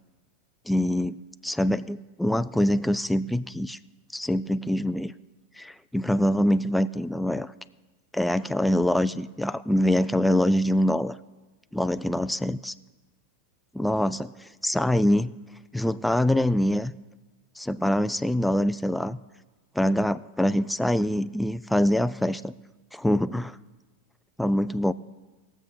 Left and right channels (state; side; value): normal; both; correlation 0.95